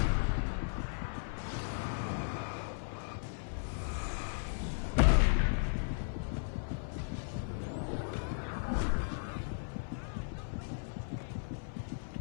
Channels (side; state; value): right; silent; 54 dB below the other